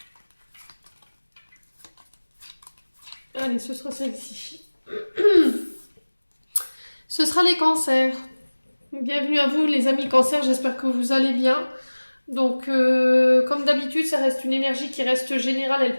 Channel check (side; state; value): both; inverted; correlation -1.00